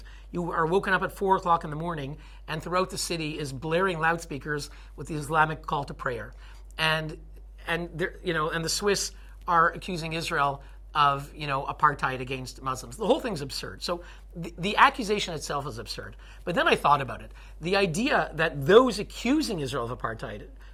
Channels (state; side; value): identical; both; correlation 1.00